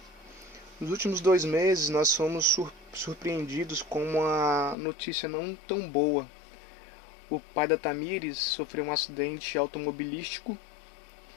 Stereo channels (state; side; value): drops out; right; at 4.8 s